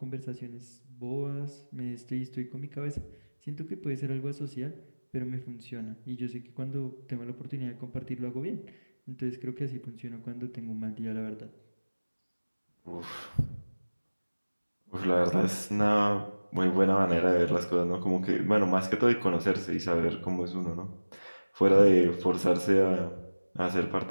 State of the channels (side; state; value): both; inverted; correlation -1.00